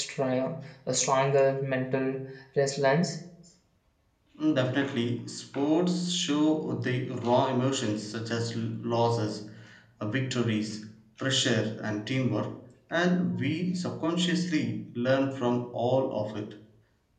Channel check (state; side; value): identical; both; correlation 1.00